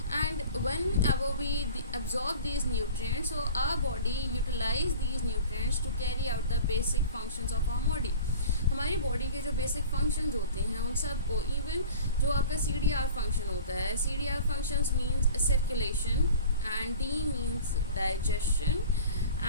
And whenever we absorb these nutrients, so our body utilize these nutrients to carry out the basic functions of our body. हमारी body के जो basic functions होते हैं उन सब को, even जो आपका CDR फंक्शन होता है, CDR functions means circulation, and D means digestion,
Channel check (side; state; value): both; inverted; correlation -0.41